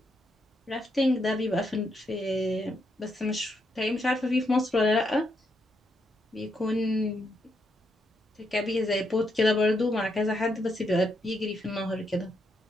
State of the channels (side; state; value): both; normal; correlation 0.79